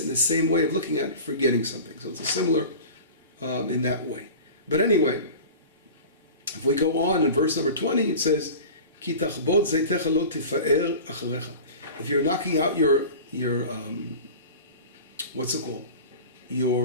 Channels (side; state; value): both; inverted; correlation -0.36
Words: in the same way of looking at forgetting something. So it's a similar in that way. But anyway, if we go on in verse number 20, it says, Ki tachbod zaytecha lo tifa'er acharecha. If you're knocking out your what's it called?